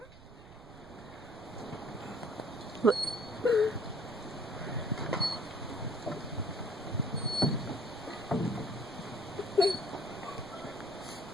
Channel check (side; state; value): right; noise; rumble, 19 dB below the sound